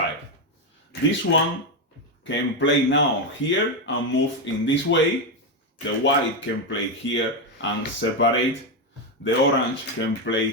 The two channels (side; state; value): both; normal; correlation 0.08